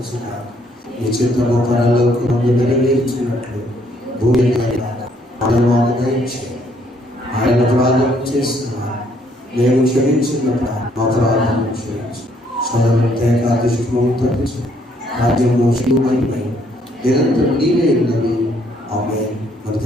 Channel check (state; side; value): normal; both; correlation 0.67